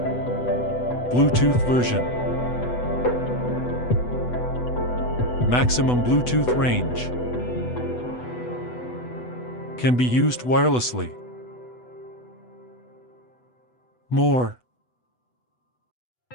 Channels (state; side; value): late; right; 8.1 ms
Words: Bluetooth version. Maximum Bluetooth range. Can be used wirelessly. More.